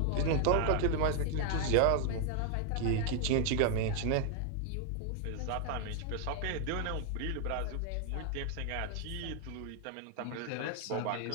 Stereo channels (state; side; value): different; both; correlation 0.00